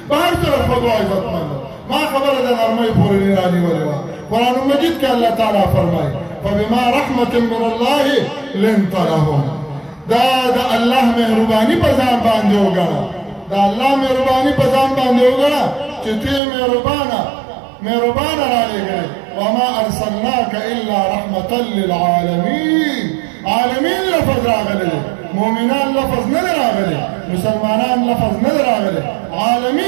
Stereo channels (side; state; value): left; drops out; at 16.4 s